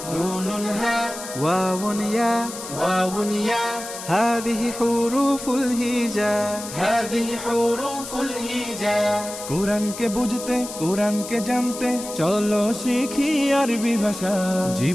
نون هاء واو ياء واو ياء هذه حروف الهجاء هذه حروف الهجاء কোরআনকে বুঝতে কোরআনকে জানতে চলো শিখি আরবি ভাষা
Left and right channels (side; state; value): left; noise; hiss, 11 dB below the sound